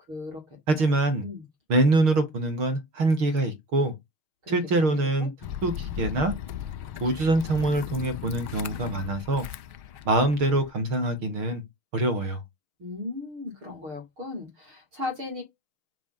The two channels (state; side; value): late; left; 6.4 ms